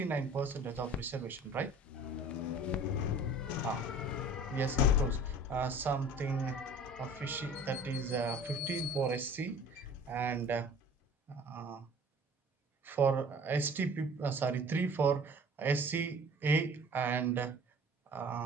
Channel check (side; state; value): both; normal; correlation 0.46